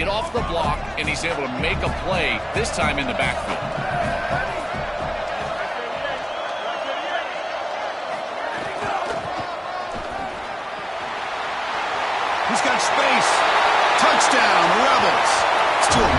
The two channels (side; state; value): both; identical; correlation 1.00